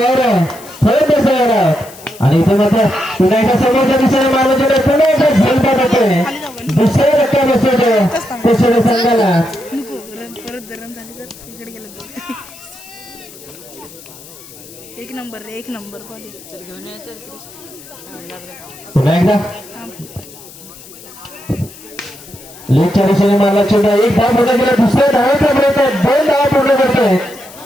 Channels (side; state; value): left; noise; hiss, 19 dB below the sound